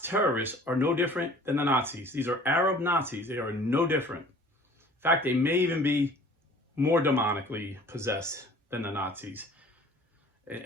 terrorists are no different than the Nazis. These are Arab Nazis. They are no different. In fact, they may even be more demonically possessed than the Nazis.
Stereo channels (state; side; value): normal; both; correlation 0.49